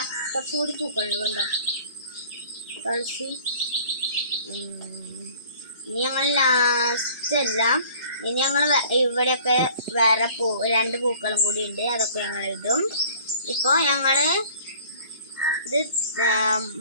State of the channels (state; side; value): inverted; both; correlation -0.50